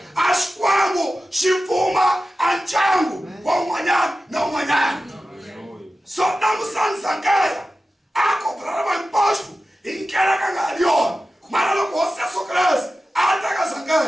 a Xikwembu xi pfuma a ndyangu wa un'wanyana na un'wanyana. So langutisani Zakheya a kobrala hinkwaswo hi ndlela ka nga ri yona mara loko Hosi Yesu Kreste a ta ka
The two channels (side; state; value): both; normal; correlation 0.94